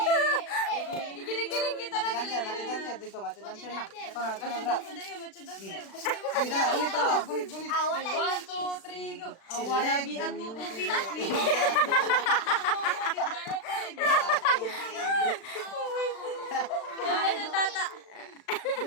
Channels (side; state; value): right; late; 36 ms